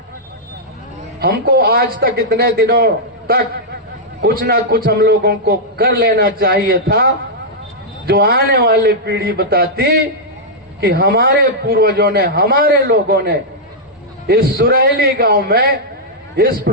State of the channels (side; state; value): both; normal; correlation -0.08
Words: हमको आज तक इतने दिनों तक कुछ ना कुछ हम लोगों को कर लेना चाहिए था, जो आने वाली पीढ़ी बताती कि हमारे पूर्वजों ने, हमारे लोगों ने इस सुरैली गांव में इस